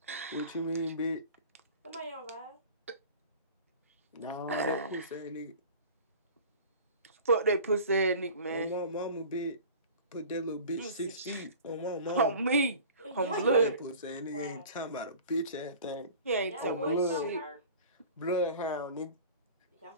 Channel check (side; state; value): both; inverted; correlation -0.42